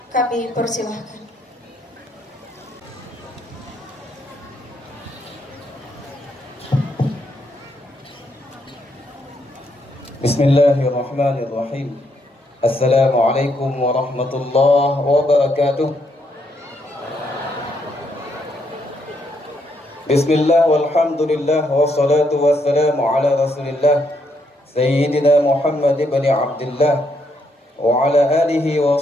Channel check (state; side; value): normal; both; correlation 0.75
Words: kami persilahkan. Bismillahirrahmanirrahim. Assalamualaikum warahmatullahi wabarakatuh. Bismillah walhamdulillah wassalatu wassalamu ala rasulillah Sayyidina Muhammad ibn Abdullah wa ala alihi wa